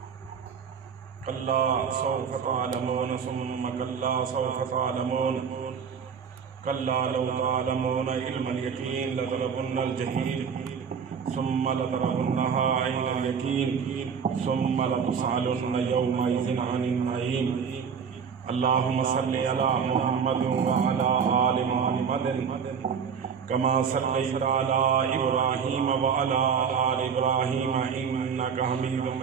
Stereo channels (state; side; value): quieter; left; 6.7 dB